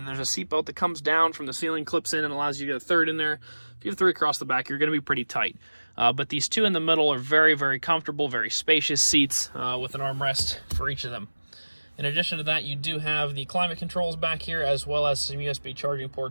there's a seat belt that comes down from the ceiling, clips in, and allows you to get a 3rd in there. If you have 3 across the back, you're going to be pretty tight. But these 2 in the middle are very, very comfortable, very spacious seats with an armrest for each of them. In addition to that, you do have the climate controls back here, as well as some USB charging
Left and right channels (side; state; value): both; inverted; correlation -1.00